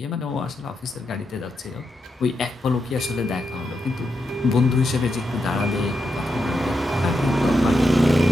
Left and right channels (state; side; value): normal; both; correlation 0.85